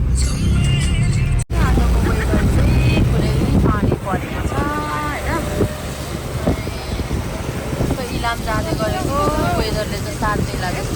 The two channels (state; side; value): identical; both; correlation 1.00